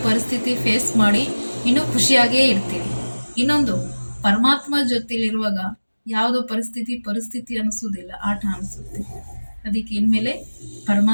ಪರಿಸ್ಥಿತಿ ಫೇಸ್ ಮಾಡಿ ಇನ್ನೂ ಖುಷಿಯಾಗೇ ಇರ್ತೀವಿ. ಇನ್ನೊಂದು, ಪರಮಾತ್ಮ ಜೊತೆಲಿರುವಾಗ ಯಾವುದೋ ಪರಿಸ್ಥಿತಿ ಅನಿಸೋದಿಲ್ಲ, ಆಟ ಅನಿಸುತ್ತೆ. ಅದಕ್ಕೆ ಇನ್ಮೇಲೆ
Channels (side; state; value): both; inverted; correlation -1.00